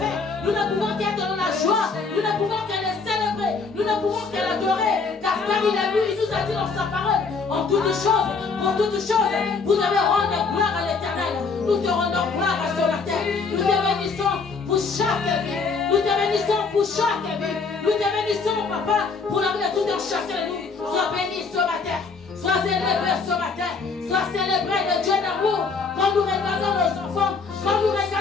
Nous ne pouvons qu'être dans la joie. Nous ne pouvons que les célébrer. Nous ne pouvons que l'adorer. Car il a vu, il nous a dit dans sa parole, en toutes choses, pour toutes choses, vous devez rendre gloire à l'Éternel. Nous te rendons gloire à ce matin. Nous te bénissons pour chaque vie. Nous te bénissons pour chaque vie. Nous te bénissons, papa, pour la vie de tout un chacun de nous. Sois béni ce matin. Sois élevé ce matin. Sois célébré le Dieu d'amour. Quand nous regardons nos enfants, quand nous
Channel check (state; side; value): quieter; right; 4.7 dB